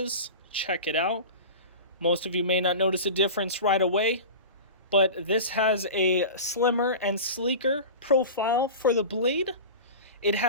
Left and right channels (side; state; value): both; inverted; correlation -0.31